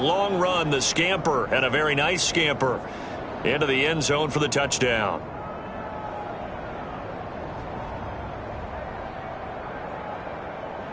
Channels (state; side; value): identical; both; correlation 1.00